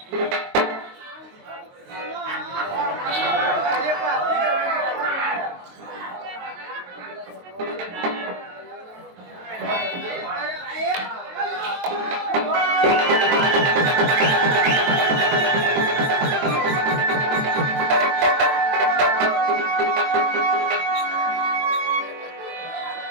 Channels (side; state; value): left; late; 22 ms